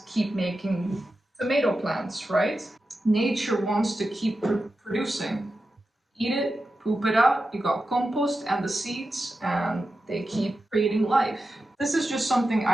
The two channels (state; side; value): normal; both; correlation 0.91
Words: keep making tomato plants, right? Nature wants to keep producing. Eat it, poop it out, you got compost and the seeds, and they keep creating life. This is just something